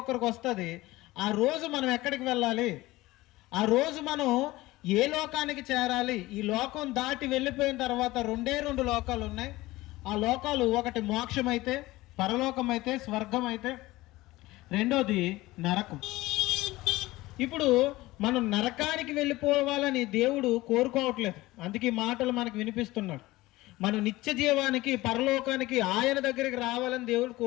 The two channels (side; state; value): right; quieter; 18.8 dB